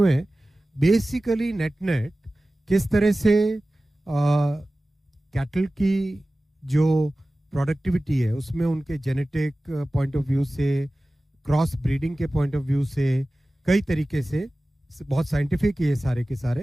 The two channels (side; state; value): both; normal; correlation 0.97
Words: हैं। बेसिकली नेट किस तरह से कैटल की जो प्रोडक्टिविटी है उसमें उनके जेनेटिक पॉइंट ऑफ व्यू से, क्रॉस ब्रीडिंग के पॉइंट ऑफ व्यू से, कई तरीके से, बहुत साइंटिफिक है ये सारे के